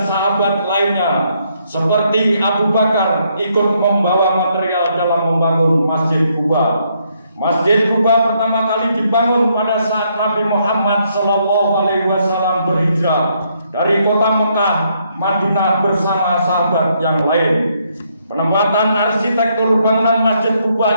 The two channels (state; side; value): inverted; both; correlation -0.73